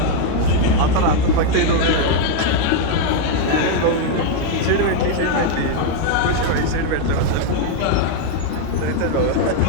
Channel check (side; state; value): both; different; correlation 0.01